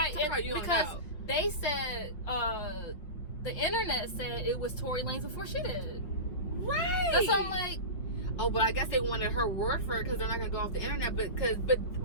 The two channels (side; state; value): right; late; 5.5 ms